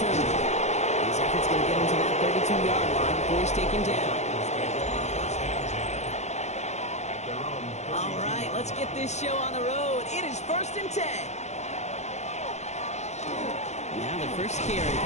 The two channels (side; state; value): right; late; 0.33 ms